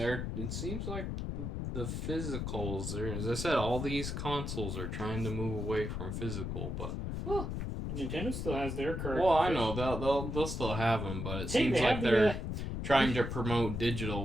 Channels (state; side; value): noise; left; rumble, 3 dB below the sound